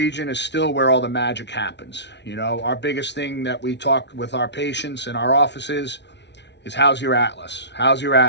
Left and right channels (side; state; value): right; late; 0.51 ms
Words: is still where all the magic happens. You know, our biggest thing that we talk with our patients in our offices is how's your atlas? How's your